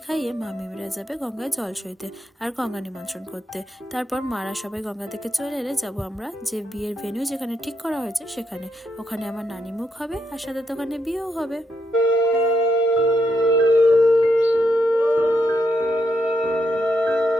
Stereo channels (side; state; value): both; normal; correlation 0.80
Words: খাইয়ে মামিরা যাবে গঙ্গায় জল সইতে আর গঙ্গা নিমন্ত্রণ করতে। তারপর মারা সবাই গঙ্গা থেকে চলে এলে যাবো আমরা যে বিয়ের ভেন্যু যেখানে ঠিক করা হয়েছে সেখানে। ওখানে আমার নানি মুখ হবে আর সাথে তো ওখানে বিয়েও হবে।